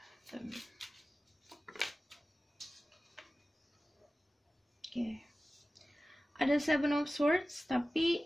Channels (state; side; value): normal; both; correlation 0.96